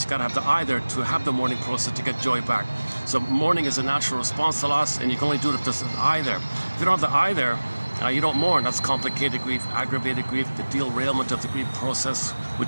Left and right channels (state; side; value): inverted; both; correlation -1.00